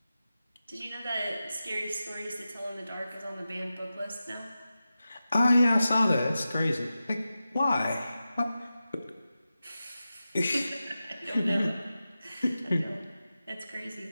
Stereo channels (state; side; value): inverted; both; correlation -0.93